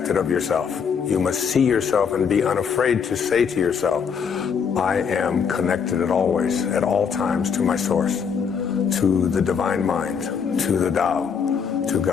it of yourself. You must see yourself and be unafraid to say to yourself, I am connected at all times to my source, to the divine mind, to the Tao, to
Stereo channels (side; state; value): right; quieter; 6.6 dB